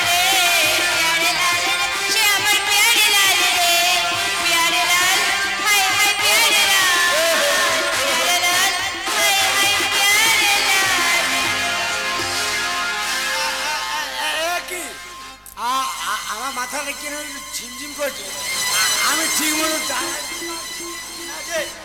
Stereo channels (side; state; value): both; identical; correlation 1.00